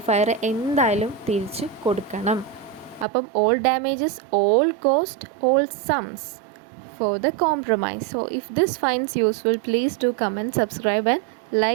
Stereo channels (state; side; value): drops out; left; at 3.1 s